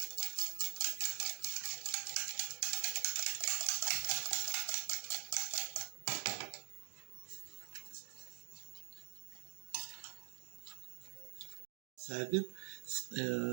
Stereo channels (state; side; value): quieter; left; 34.9 dB